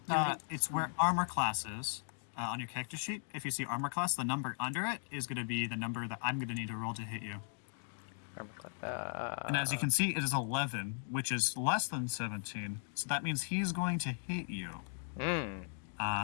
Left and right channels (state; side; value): silent; right; digital silence